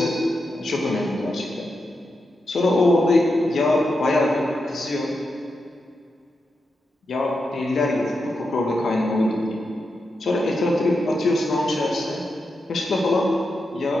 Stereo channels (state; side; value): normal; both; correlation 0.87